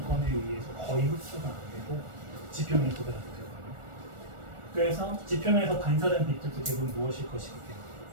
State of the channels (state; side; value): late; left; 1.4 ms